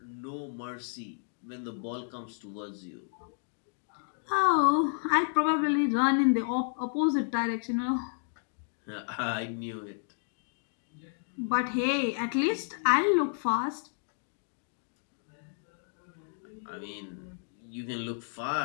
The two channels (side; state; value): right; silent; digital silence